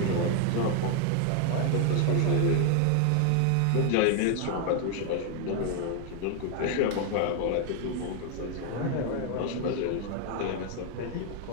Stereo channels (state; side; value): different; both; correlation 0.00